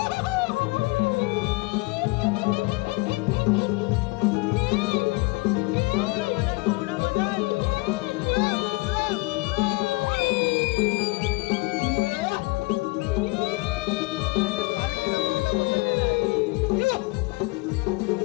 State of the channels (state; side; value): quieter; right; 25.7 dB